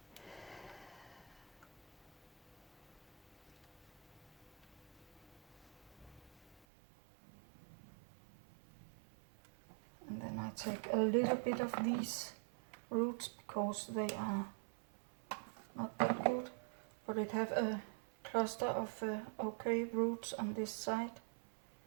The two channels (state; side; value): drops out; left; at 6.7 s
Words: And then I take a little bit of these roots because they are not that good, but it have a cluster of okay roots on this side.